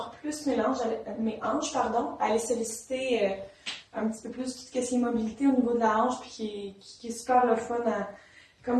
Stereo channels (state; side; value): identical; both; correlation 1.00